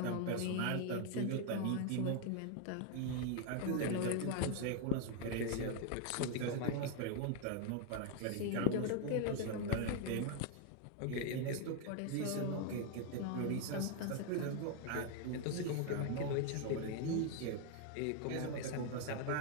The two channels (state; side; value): different; both; correlation 0.01